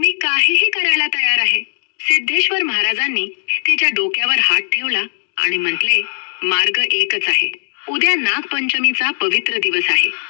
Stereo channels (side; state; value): right; silent; 68 dB below the other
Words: काहीही करायला तयार आहे. सिद्धेश्वर महाराजांनी तिच्या डोक्यावर हात ठेवला आणि म्हटले, मार्ग एकच आहे. उद्या नागपंचमीचा पवित्र दिवस आहे.